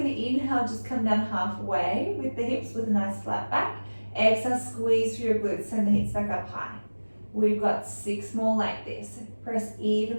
going to inhale, just come down halfway with the hips with a nice flat back. Exhale, squeeze through your glutes, send the hips back up high. We've got 6 more like this. Press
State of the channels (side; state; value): both; inverted; correlation -1.00